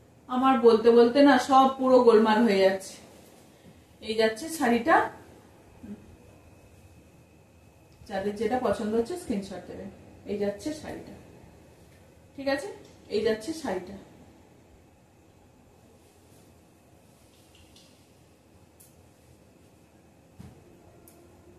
আমার বলতে বলতে না সব পুরো গোলমাল হয়ে যাচ্ছে। এই যাচ্ছে শাড়িটা, যাদের যেটা পছন্দ হচ্ছে স্ক্রিনশট দেবেন। এই যাচ্ছে শাড়িটা, ঠিক আছে, এই যাচ্ছে শাড়িটা।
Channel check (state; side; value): identical; both; correlation 1.00